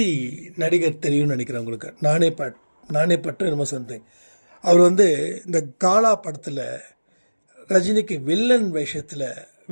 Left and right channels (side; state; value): both; inverted; correlation -1.00